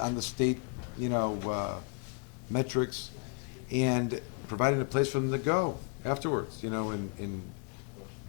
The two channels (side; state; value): right; quieter; 36.0 dB